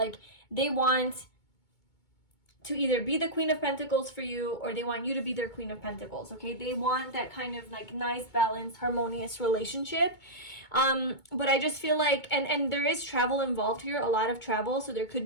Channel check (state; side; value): late; right; 2.2 ms